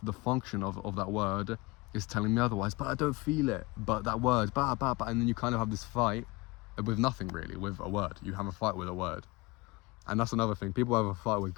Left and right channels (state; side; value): quieter; right; 23.4 dB